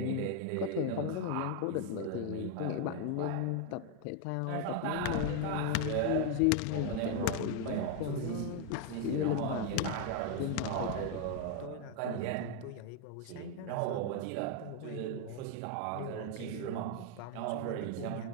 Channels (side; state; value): both; different; correlation 0.01